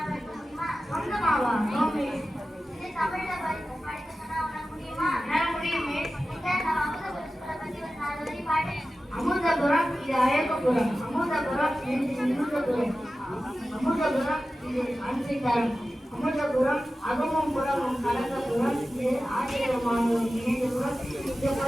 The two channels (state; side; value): normal; both; correlation 0.94